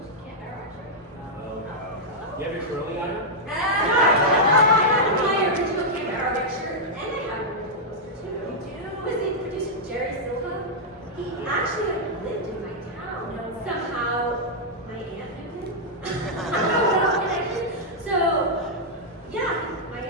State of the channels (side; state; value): both; normal; correlation -0.06